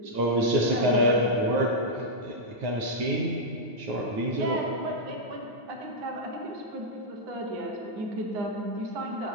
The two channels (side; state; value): left; late; 9.4 ms